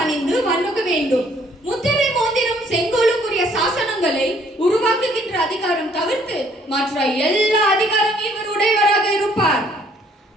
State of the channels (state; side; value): normal; both; correlation 0.62